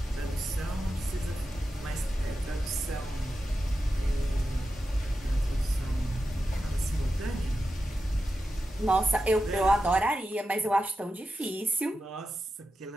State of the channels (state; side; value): normal; both; correlation 0.90